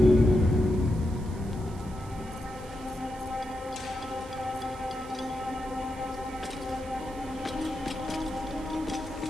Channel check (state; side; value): noise; right; hiss, 21 dB below the sound